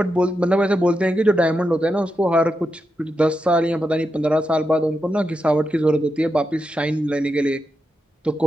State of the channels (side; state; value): both; normal; correlation 0.87